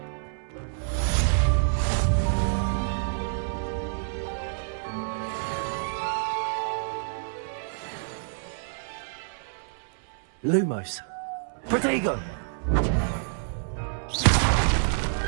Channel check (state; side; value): silent; left; 60 dB below the other